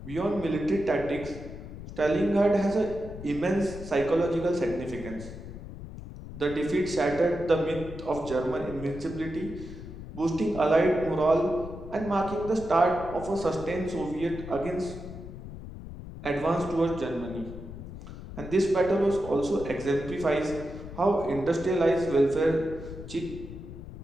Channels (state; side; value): noise; left; rumble, 12 dB below the sound